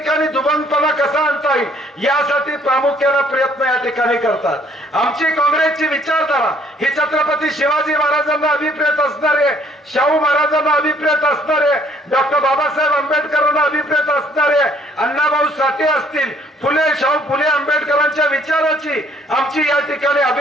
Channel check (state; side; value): normal; both; correlation 0.62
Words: दुबंगपणा कसा आणता येईल यासाठी प्रामुख्याने प्रयत्न या ठिकाणी करतात। आमची काँग्रेसची विचारधारा ही छत्रपती शिवाजी महाराजांना अभिप्रेत असणारे, शाहू महाराजांना अभिप्रेत असणारे, डॉक्टर बाबासाहेब आंबेडकरांना अभिप्रेत असणारे, अण्णाभाऊ साठे असतील, फुले शाहू फुले आंबेडकरांच्या विचाराची आमची या ठिकाणी